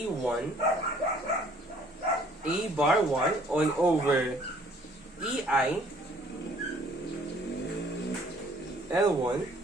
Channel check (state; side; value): normal; both; correlation 0.58